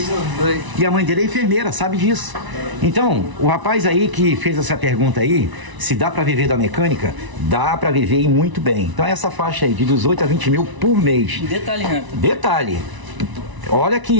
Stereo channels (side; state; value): left; late; 1.0 ms